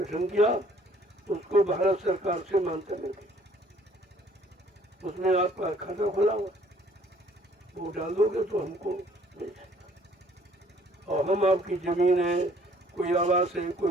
किया, उसको भारत सरकार से मान्यता मिल गई। उसमें आपका खाता खुला हुआ, वो डाल दोगे तो हमको मिल जाएगा। और हम आपकी जमीन है, कोई आवास है,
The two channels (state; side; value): normal; both; correlation 0.59